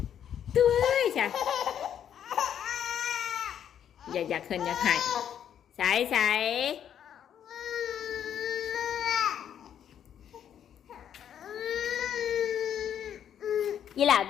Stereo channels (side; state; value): right; quieter; 9.4 dB